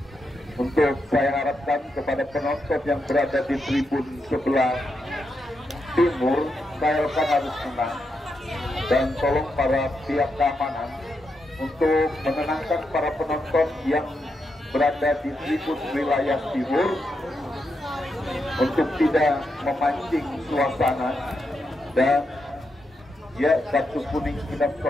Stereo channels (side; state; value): both; normal; correlation 0.84